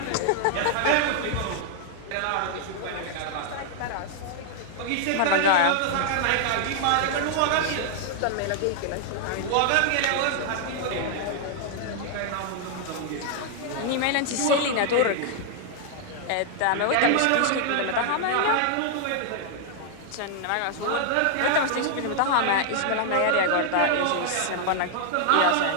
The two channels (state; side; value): different; both; correlation 0.00